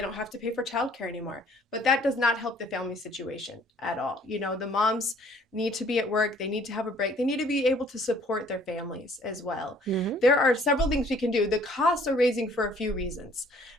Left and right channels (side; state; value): both; normal; correlation 0.58